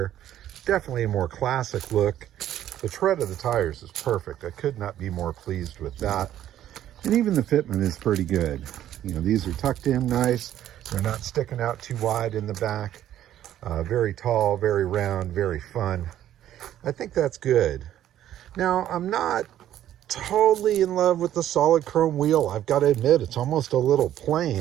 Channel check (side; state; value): left; quieter; 11.8 dB